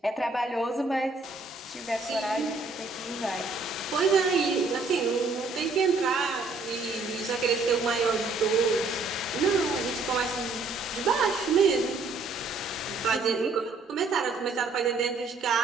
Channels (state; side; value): quieter; left; 3.6 dB